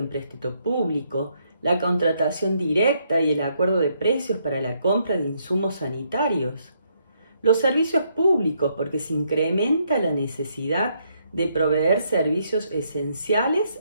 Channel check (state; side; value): inverted; both; correlation -0.74